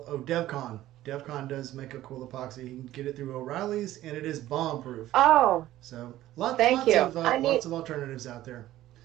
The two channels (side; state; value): left; quieter; 14.5 dB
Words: DevCon. DevCon does make a cool epoxy. You can get it through O'Reilly's, and it is bomb proof. oh, So thank you. Lots of alternatives out there.